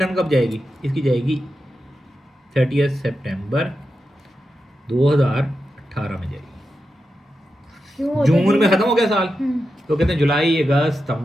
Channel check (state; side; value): normal; both; correlation 0.89